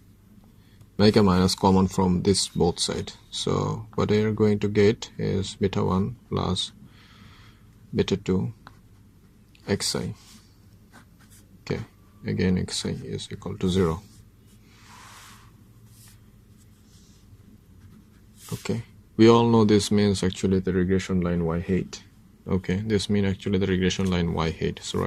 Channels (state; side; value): identical; both; correlation 1.00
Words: make a minus common from this both side. So what we are going to get is beta 1 plus beta 2 xi. Okay, again xi is equal to 0. Okay, we all know this means actually the regression line y hat. Okay, this means actually the regression line y hat. So